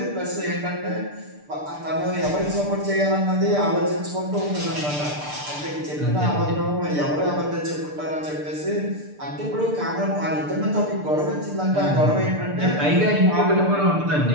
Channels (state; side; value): late; left; 6.8 ms